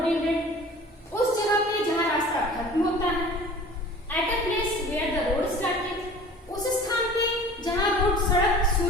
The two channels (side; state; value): both; normal; correlation 0.44